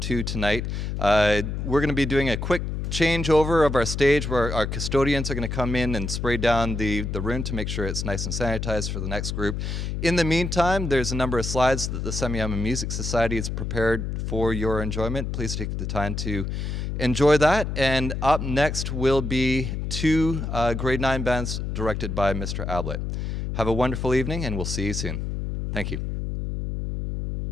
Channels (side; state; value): left; noise; hum, 3 dB below the sound